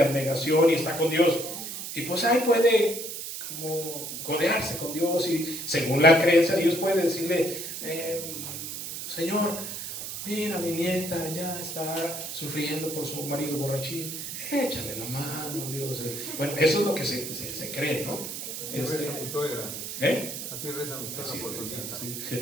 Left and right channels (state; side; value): noise; right; hiss, 7 dB below the sound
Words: abnegación y está con Dios, y pues ahí puede como codearse con Dios, y según la creencia Dios puede decirle: Señor, mira, mi nieta ya está sufriendo por su marido borrachín, échale la mano, Dios. Bueno, eso es lo que se cree, ¿no? Así reza mi suegra. Así reza mi suegra por su nieta. Sí.